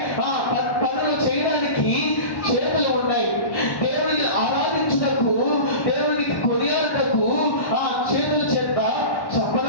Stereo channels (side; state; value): right; late; 1.1 ms